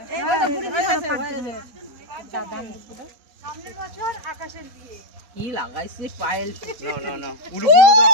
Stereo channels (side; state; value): left; late; 4.0 ms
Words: কি লাগাইছে পায়েল? না না, পুরো পুরো দাও।